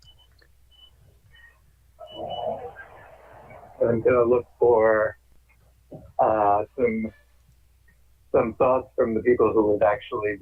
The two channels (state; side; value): identical; both; correlation 1.00